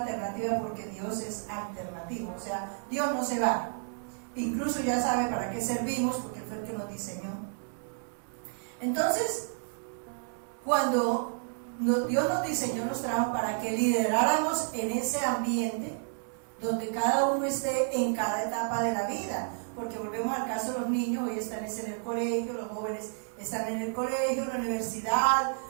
alternativa, porque Dios es alternativo, o sea, Dios no se va, incluso ya sabe para qué servimos, porque Él fue el que nos diseñó. Entonces, cuando Dios nos diseñó, nos trajo para que lideráramos en ese ambiente donde cada uno esté en cada etapa de la vida, porque volvemos al caso de los niños, hoy están en el colegio, los jóvenes están en el colegio, en la universidad,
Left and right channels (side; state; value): left; silent; digital silence